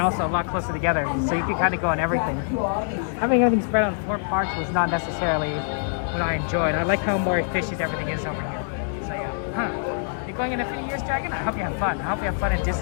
also a lot closer together, so you can kind of go on everything. Having everything spread on 4 parks was not necessarily what I enjoyed. I like how more efficient everything is over here. So yeah. You're going in a few years, Dragon? I hope you have fun. I hope you have fun at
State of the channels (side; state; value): right; silent; digital silence